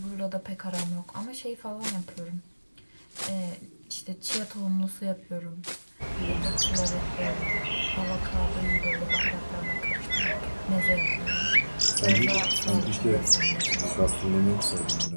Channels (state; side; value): inverted; both; correlation -1.00